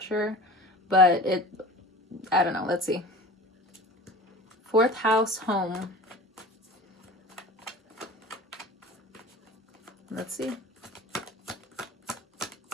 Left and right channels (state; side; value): normal; both; correlation 0.38